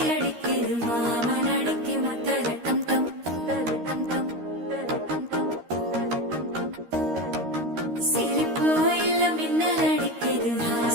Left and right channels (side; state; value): left; late; 13 ms